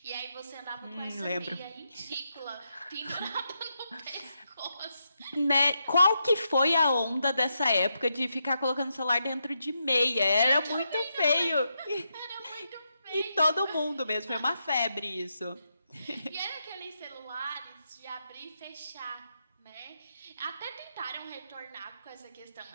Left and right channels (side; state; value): both; inverted; correlation -0.83